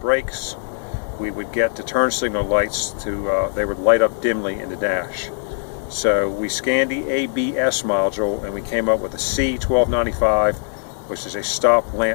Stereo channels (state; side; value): silent; right; digital silence